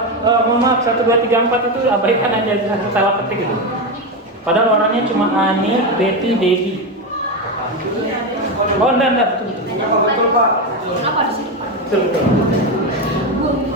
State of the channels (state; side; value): normal; both; correlation 0.13